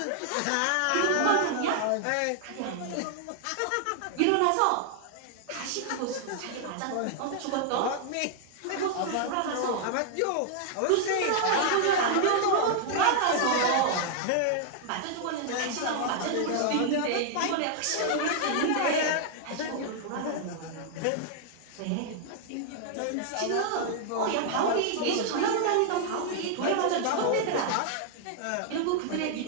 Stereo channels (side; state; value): both; different; correlation 0.00